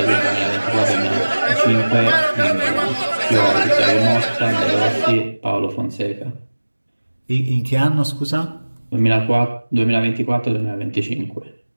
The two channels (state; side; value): inverted; both; correlation -1.00